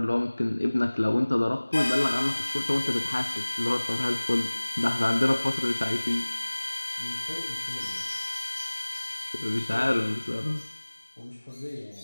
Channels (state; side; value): inverted; both; correlation -1.00